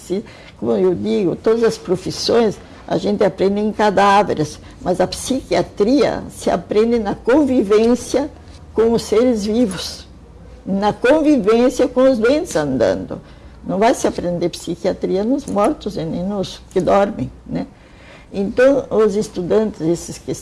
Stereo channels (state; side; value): identical; both; correlation 1.00